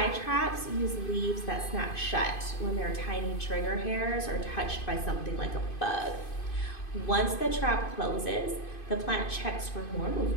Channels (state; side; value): late; right; 2.5 ms